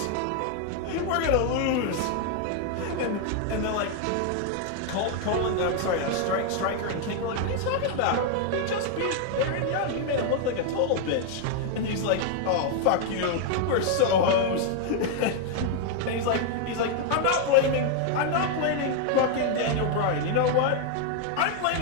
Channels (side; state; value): both; different; correlation 0.00